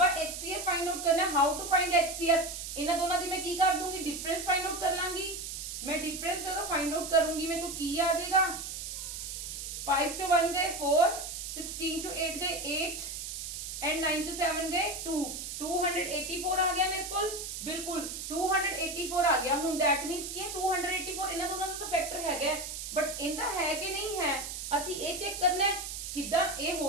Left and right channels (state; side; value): noise; right; hiss, 7 dB below the sound